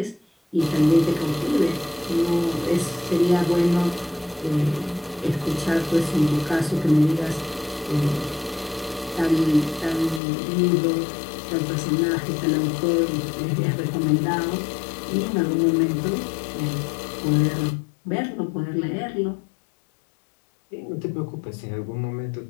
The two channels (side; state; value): right; drops out; at 10.2 s